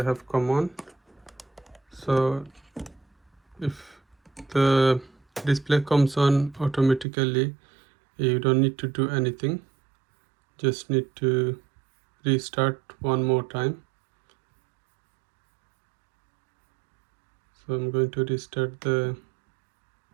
have come on. So if the display comes on automatically, you don't need to do anything, just need to restart one more time. So I'm going to restart the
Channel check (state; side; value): drops out; left; at 7.1 s